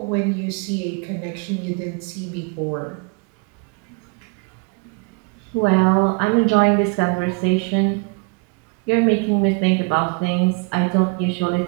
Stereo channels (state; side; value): quieter; left; 31.3 dB